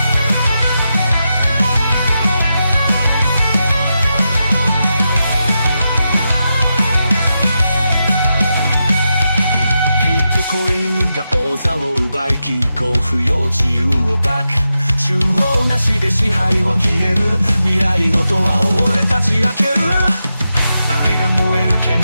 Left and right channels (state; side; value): inverted; both; correlation -0.88